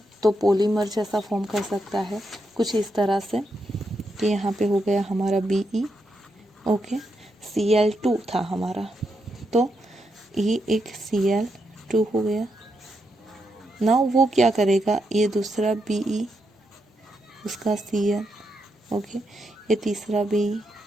तो पॉलीमर जैसा फॉर्म कर सकता है कुछ इस तरह से कि यहाँ पे हो गया हमारा Be, ओके, Cl2 था हमारा, तो ये एक Cl2 हो गया। नाउ वो क्या करेगा? ये दूसरा Be, उसका Cl, ओके, ये तीसरा Be,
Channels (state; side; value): normal; both; correlation 0.83